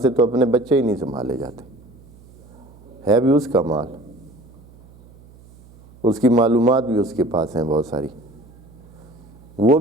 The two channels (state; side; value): noise; right; hum, 24 dB below the sound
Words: تو اپنے بچے ہی نہیں سنبھالے جاتے، ہے بھی اس کا مال، اس کی معلومات بھی اس کے پاس ہیں بہت ساری، وہ